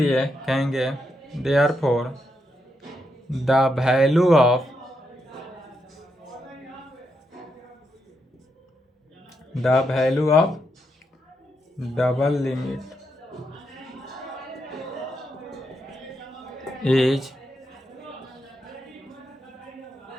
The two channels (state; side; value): normal; both; correlation 0.82